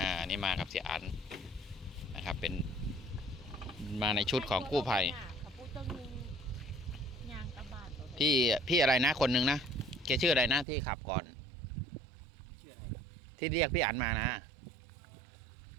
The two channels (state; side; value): drops out; left; at 10.7 s